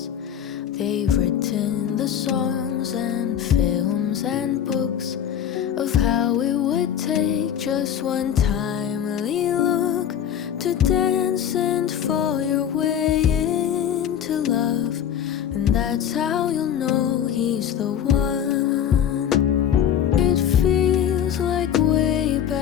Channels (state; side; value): quieter; right; 9.4 dB